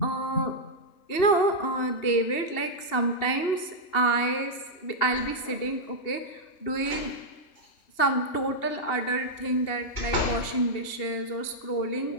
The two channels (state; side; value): late; right; 2.8 ms